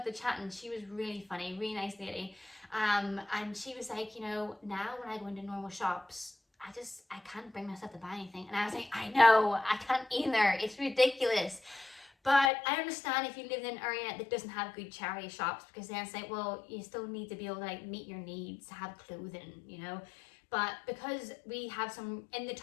to chatting. She was really funny, really nice lady. And she was like, you know, now when I go into normal shops, I can't bring myself to buy anything. And I was like, I know, I can't either. It's ridiculous. But I understand if you live in an area that doesn't have good charity shops, because then it's like, well, you still need to be able to like meet your needs, have clothing, you know. But because we have some in the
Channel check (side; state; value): right; drops out; at 12.5 s